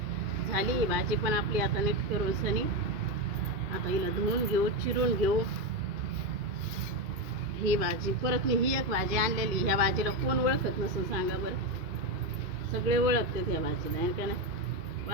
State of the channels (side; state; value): left; late; 2.5 ms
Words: झाली भाजी पण आपली आता नीट करून सनी. आता हिला धुवून घेऊ, चिरून घेऊ. ही भाजी परत मी ही एक भाजी आणलेली. ह्या भाजीला कोण ओळखत नसेल सांगा बरं. सगळे ओळखतात ह्या भाजीला, आहे का नाही?